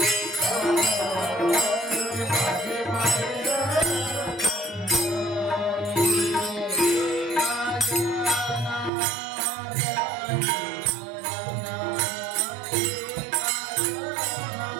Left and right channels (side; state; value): left; drops out; at 8.9 s